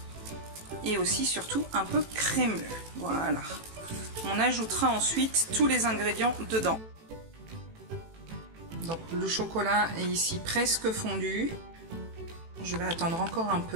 Et aussi surtout un peu crémeux. Voilà. On ajoutera ensuite tous les ingrédients dedans. Donc le chocolat est ici presque fondu. Je vais attendre encore un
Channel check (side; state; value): left; late; 18 ms